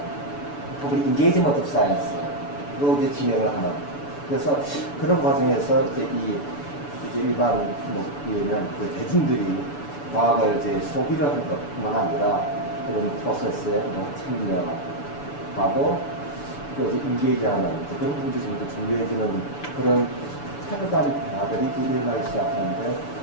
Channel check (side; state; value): right; late; 6.9 ms